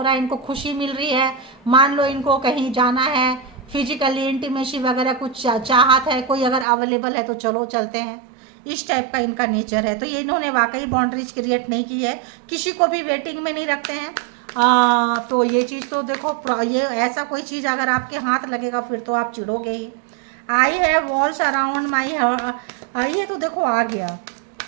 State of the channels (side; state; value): left; drops out; at 6.7 s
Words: रहा है, इनको खुशी मिल रही है, मान लो इनको कहीं जाना है, फिजिकली इंटीमेसी वगैरह कुछ चाहत है, कोई अगर अवेलेबल है तो चलो चलते हैं, इस टाइप का इनका नेचर है। तो ये इन्होंने वाकई बाउंड्रीज क्रिएट नहीं की है, किसी को भी वेटिंग में नहीं रखते हैं। तो ये चीज़ तो देखो, ये ऐसा कोई चीज़ अगर आपके हाथ लगेगा फिर तो आप चिढ़ोगे ही। I have walls around my, ये तो देखो आ गया,